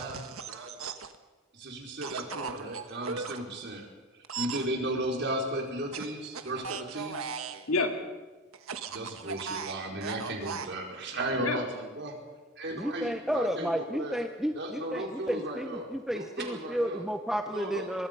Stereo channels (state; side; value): normal; both; correlation 0.37